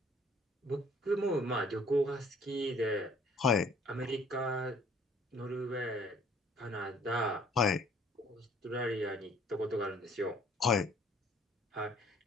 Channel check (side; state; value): both; normal; correlation 0.57